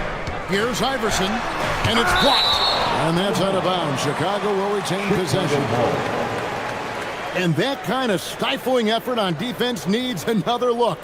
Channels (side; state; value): both; identical; correlation 1.00